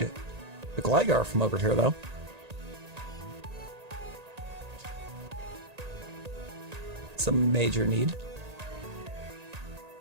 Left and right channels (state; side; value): late; left; 1.8 ms